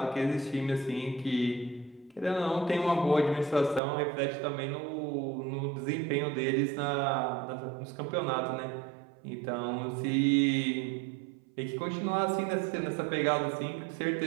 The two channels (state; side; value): drops out; left; at 3.8 s